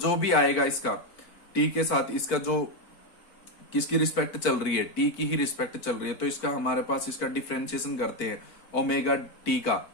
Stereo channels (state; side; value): late; right; 4.5 ms